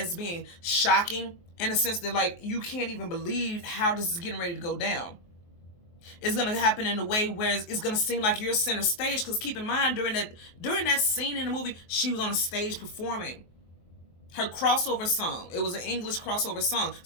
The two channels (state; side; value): late; right; 23 ms